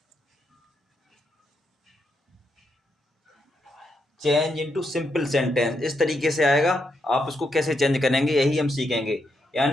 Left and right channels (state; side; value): normal; both; correlation 0.81